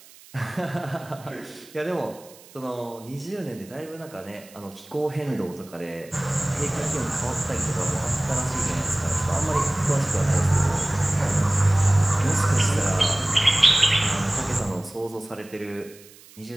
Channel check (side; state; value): right; noise; hiss, 23 dB below the sound